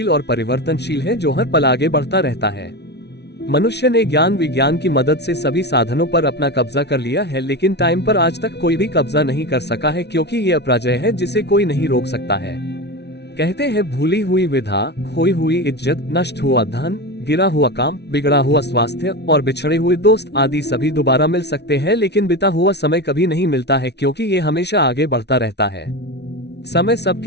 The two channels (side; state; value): right; late; 0.49 ms